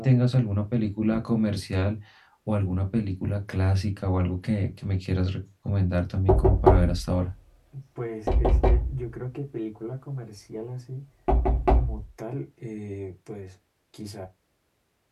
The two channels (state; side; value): identical; both; correlation 1.00